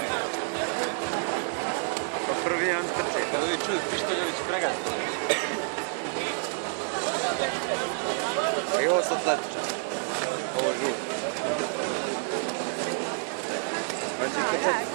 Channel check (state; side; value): silent; left; 59 dB below the other